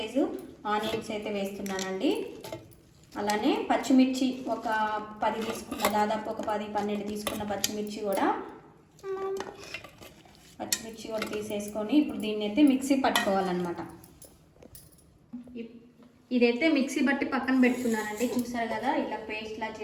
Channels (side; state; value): both; identical; correlation 1.00